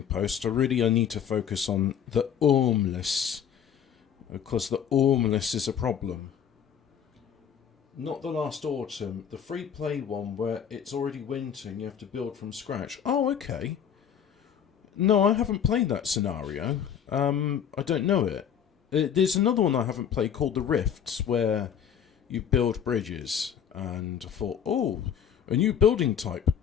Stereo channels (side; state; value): right; quieter; 8.4 dB